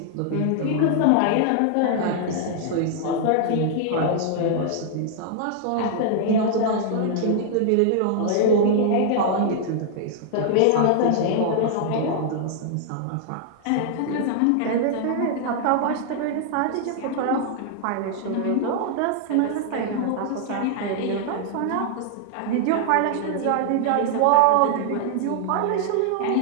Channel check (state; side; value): different; both; correlation -0.01